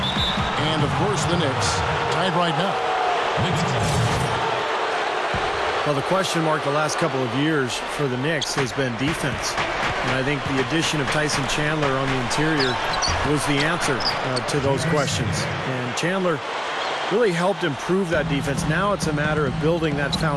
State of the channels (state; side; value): identical; both; correlation 1.00